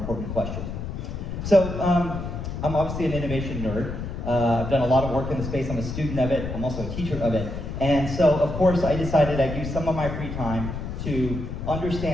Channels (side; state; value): left; noise; rumble, 6 dB below the sound